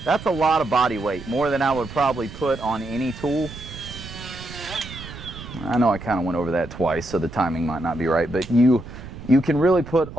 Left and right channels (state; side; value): noise; right; rumble, 13 dB below the sound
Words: lot of body weight, more than I would probably put on any tool. I know I kind of went over that twice, so the timing might not be right, but you can really put